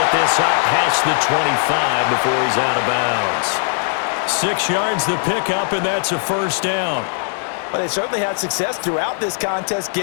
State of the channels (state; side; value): silent; right; digital silence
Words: this up past the 25 before he's out of bounds. 6 yards the pickup, and that's a 1st down. But they certainly had success throughout this contest,